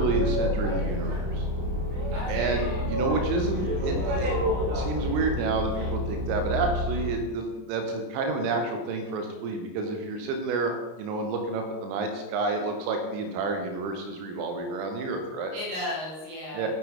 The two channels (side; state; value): left; late; 32 ms